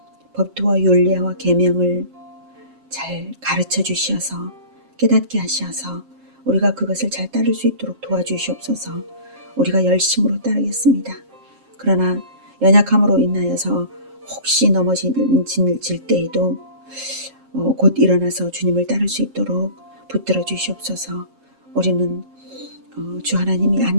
법도와 율례와 계명을 잘 가르쳐 주셔서 깨닫게 하셔서 우리가 그것을 잘 따를 수 있도록 도와주시옵소서. 우리가 열심으로 따르겠습니다. 그러나 연약함으로 인하여서 혹시 넘어질 때에도 곧 일어나서 주님을 따를 수 있도록 붙들어 주시옵소서. 우리는 주 하나님이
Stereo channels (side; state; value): left; late; 7.5 ms